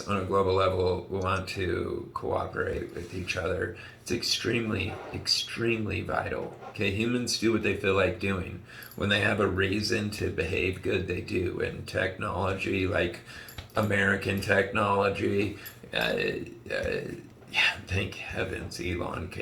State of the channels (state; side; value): identical; both; correlation 1.00